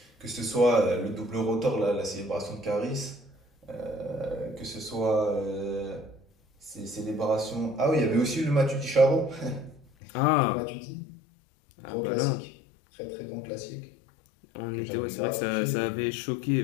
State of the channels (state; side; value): drops out; right; at 9.9 s